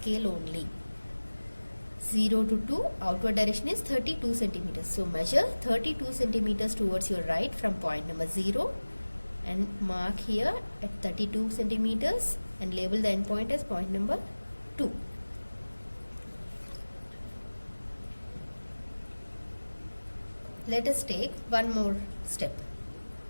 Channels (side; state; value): both; inverted; correlation -1.00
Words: only. 0 to 2 outward direction is 32 centimeters. So measure 32 centimeters towards your right from point number 0 and mark here at 32 centimeters and label the end point as point number 2. Let us take one more step.